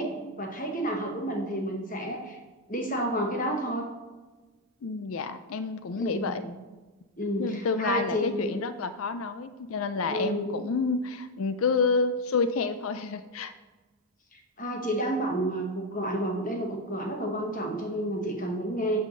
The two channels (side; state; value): both; normal; correlation 0.07